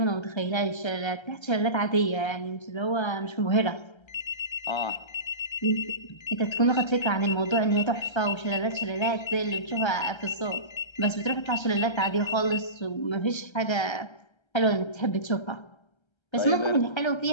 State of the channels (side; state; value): right; late; 1.3 ms